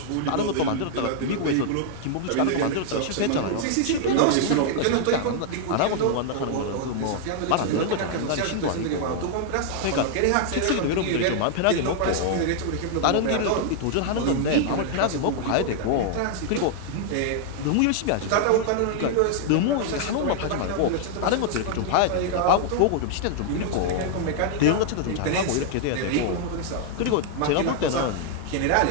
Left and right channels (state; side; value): different; both; correlation 0.00